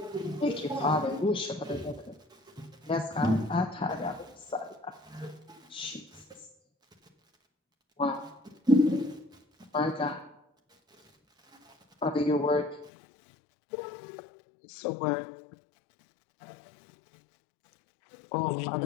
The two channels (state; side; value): drops out; right; at 12.9 s